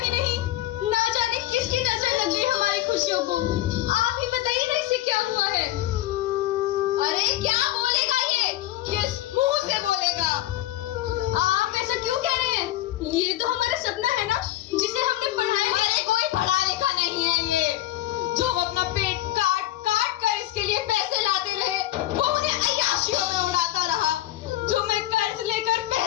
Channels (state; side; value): quieter; right; 15.0 dB